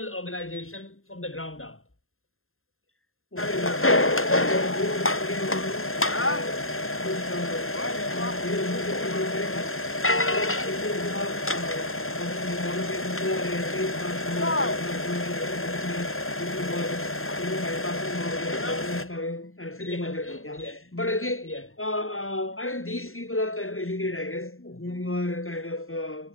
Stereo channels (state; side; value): late; right; 0.61 ms